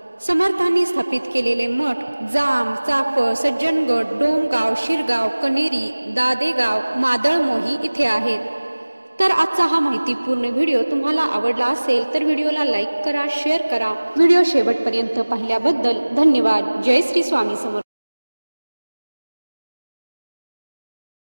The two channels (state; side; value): inverted; both; correlation -1.00